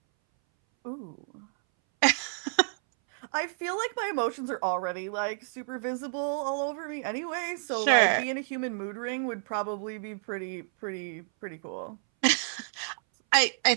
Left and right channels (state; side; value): silent; left; 58 dB below the other